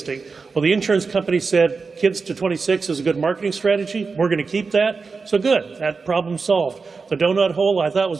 Well, the insurance company said kids to 26 is a good marketing strategy. We're going to keep that. So good. That problem solved. The donut hole, I thought,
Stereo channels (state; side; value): quieter; left; 4.7 dB